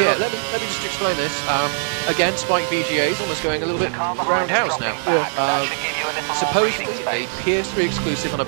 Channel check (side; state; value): left; silent; digital silence